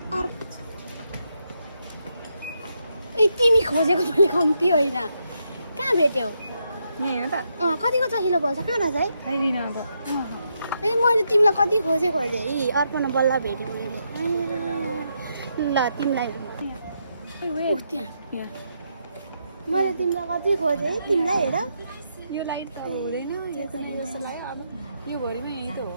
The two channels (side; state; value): both; inverted; correlation -0.80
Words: ए तिमी खोजेको मैले कम्ती होइन, कहाँ भेट्यौ? यहाँ हेर्नु त कतिको चाहिलो बोल्छ, कहाँ रहेछ है? आइदिन त। ए मैले तिमीलाई कति खोजेँ यी अर्पणा बल्ल भेटेँ मैले। ल तिमीलाई यहाँ मैले तिमीलाई कति खोजेँ तिमीलाई हेर। यो लाइट त हुँदैन जस्तो लाग्यो। अब यो भरिमा यही त हो।